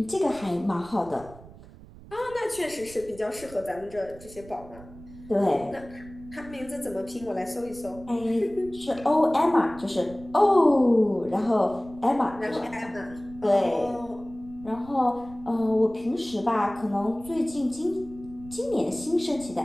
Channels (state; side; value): noise; right; rumble, 19 dB below the sound